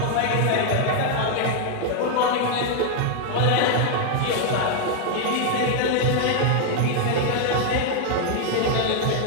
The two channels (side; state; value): both; different; correlation 0.00